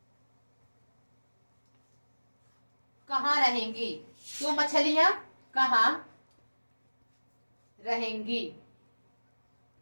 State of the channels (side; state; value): both; inverted; correlation -1.00